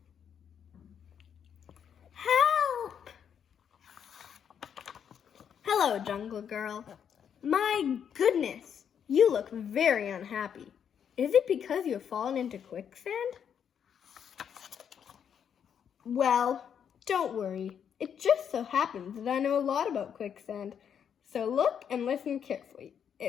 Help! Hello, Jungle Girl. My goodness, you look very unhappy. Is it because you have fallen into quicksand? Well, don't worry. It just so happens that I know a lot about quicksand. So look and listen carefully.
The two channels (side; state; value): right; quieter; 8.1 dB